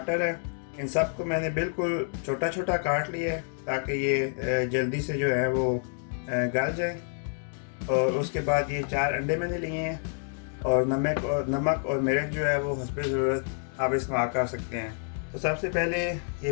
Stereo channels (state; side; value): silent; right; 59 dB below the other